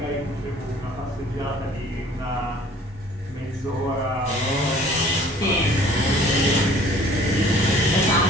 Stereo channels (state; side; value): normal; both; correlation 0.52